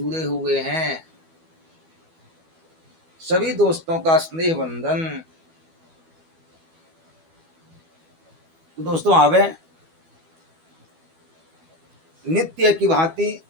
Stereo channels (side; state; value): left; late; 12 ms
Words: हुए हैं, सभी दोस्तों का स्नेह बंधन। तो दोस्तों आवे नित्य की भांति